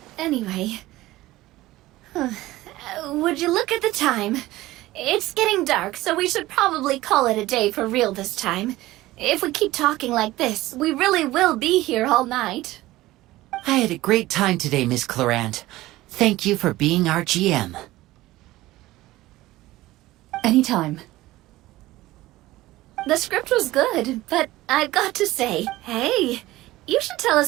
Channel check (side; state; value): left; quieter; 17.3 dB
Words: anyway. Would you look at the time? It's getting dark, so we should probably call it a day for real this time. If we keep talking like this, we really will be here all night. I had a great time today, Miss Clorand. Thank you for being our GM. Anytime. The script was good, but I've got to say, hey, you should tell